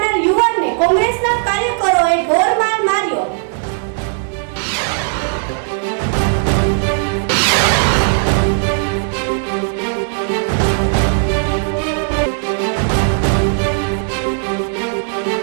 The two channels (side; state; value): left; silent; digital silence